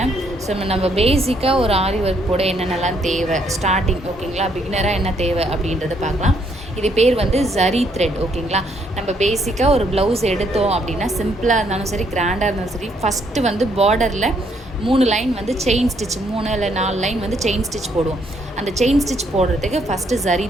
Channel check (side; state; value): both; normal; correlation 0.71